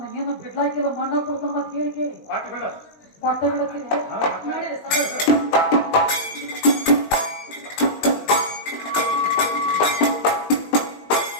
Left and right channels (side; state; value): right; late; 20 ms